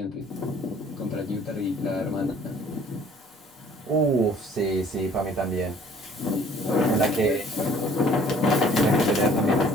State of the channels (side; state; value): both; normal; correlation 0.55